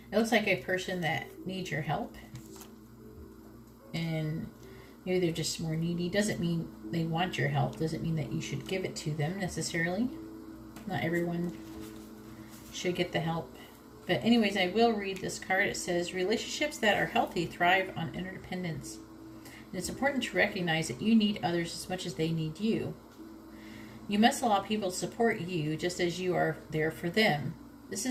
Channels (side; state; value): both; identical; correlation 1.00